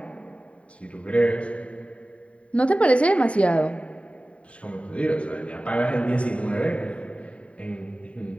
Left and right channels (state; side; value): late; right; 0.063 ms